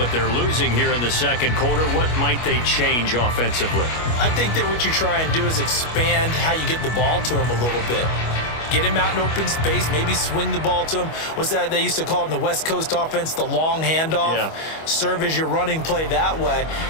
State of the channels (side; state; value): right; late; 25 ms